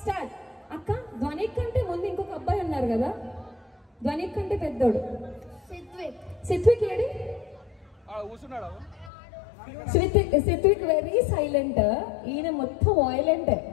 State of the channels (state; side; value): drops out; right; at 9.1 s